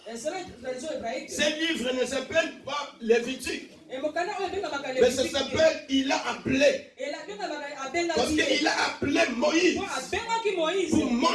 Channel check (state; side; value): identical; both; correlation 1.00